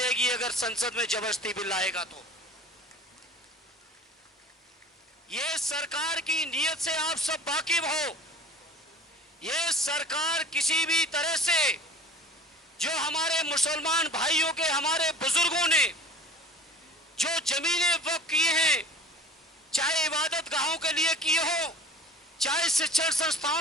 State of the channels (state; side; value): normal; both; correlation 0.43